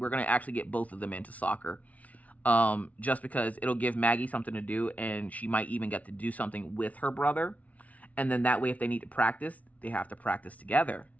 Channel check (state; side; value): late; right; 0.069 ms